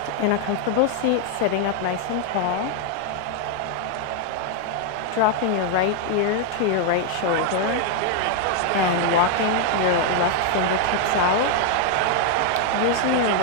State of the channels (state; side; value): different; both; correlation 0.00